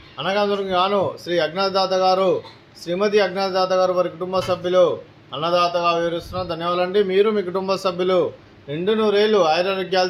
అన్నదాతలకు గాను శ్రీ అజ్ఞాతదాత గారు, శ్రీమతి అజ్ఞాతదాత గారు వారి కుటుంబ సభ్యులు అన్నదాతగా వివరిస్తున్నాం. ధన్యవాదాలండి. మీరు మీ కుటుంబ సభ్యులు నిండు నూరేళ్లు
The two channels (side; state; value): both; identical; correlation 1.00